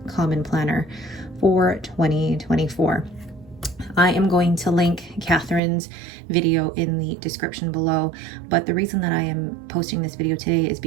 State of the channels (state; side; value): drops out; left; at 5.6 s